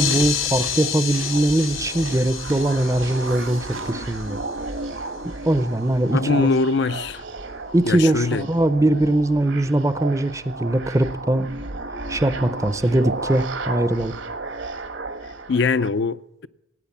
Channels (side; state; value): both; normal; correlation 0.72